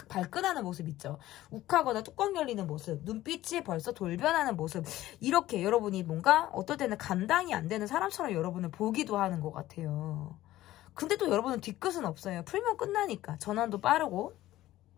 발끈하는 모습 있죠. 욱하거나 뚜껑 열리는 모습, 눈빛이 벌써 돌변하는 모습, 이렇게 여러분이 뭔가 어떨 때는 감당이 안 되는 사람처럼 여러분을 보기도 하는 것 같아요. 근데 또 여러분은 뒤끝은 없어요. 풀면 끝나니까. 전환도 빠르고.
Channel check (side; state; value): right; quieter; 15.2 dB